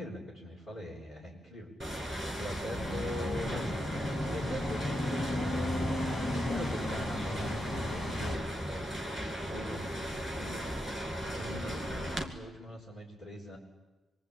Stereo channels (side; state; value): both; normal; correlation 0.85